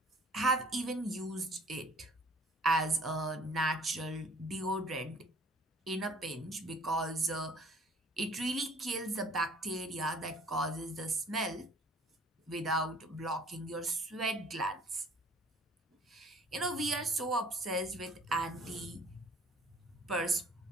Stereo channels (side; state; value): both; normal; correlation 0.54